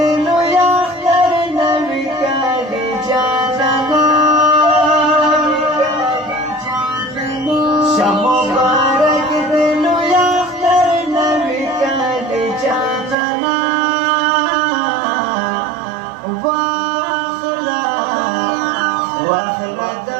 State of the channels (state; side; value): drops out; left; at 13.2 s